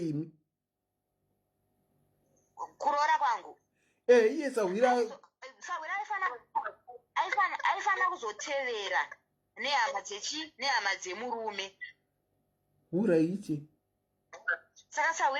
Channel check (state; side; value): identical; both; correlation 1.00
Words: Kuroora kwangu? Iye Sawira aifana kuzotevera nehama dzemurume. uraiti saka